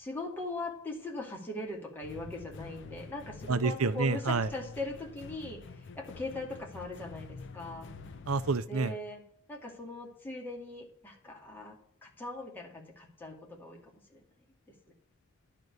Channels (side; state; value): both; normal; correlation 0.38